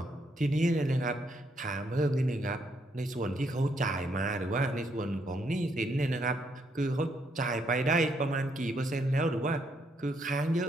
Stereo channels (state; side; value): normal; both; correlation 0.74